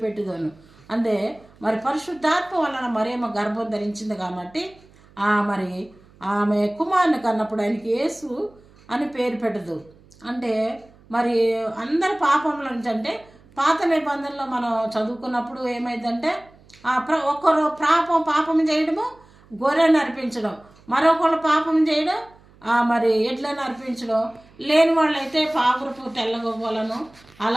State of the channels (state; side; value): noise; right; hum, 27 dB below the sound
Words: పెట్టుదను. అంటే మరి పరిశుద్ధాత్మ వలన మరేమో గర్భం ధరించింది కాబట్టి మరి ఆమె కుమారుని కన్నప్పుడు ఆయనకి యేసు అని పేరు పెట్టదు. అంటే మరి అందరి పాపముల నుంచి, అంటే పాత నిబంధనలో మనం చదువుకున్నప్పుడు ఏమైందంటే ఒకరు పాపం చేయడము గొర్రెను అర్పించడం, మరొకళ్ళు పాపం చేయడం మరి ఎడ్లను అర్పించడం, లేని వాళ్ళైతే పావురపు తెల్లగొవ్వలను